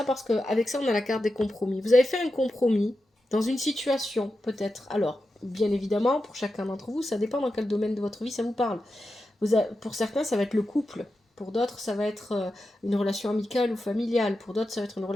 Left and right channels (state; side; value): normal; both; correlation 0.90